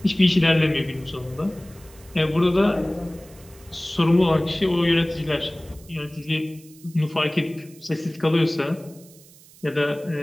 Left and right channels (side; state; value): right; noise; hiss, 24 dB below the sound